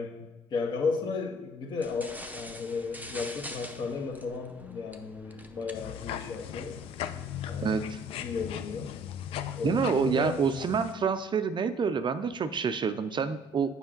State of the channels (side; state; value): both; normal; correlation 0.55